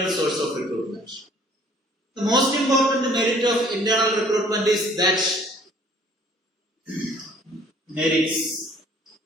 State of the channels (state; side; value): normal; both; correlation 0.56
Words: source of recruitment. The most important merit of internal recruitment is that merits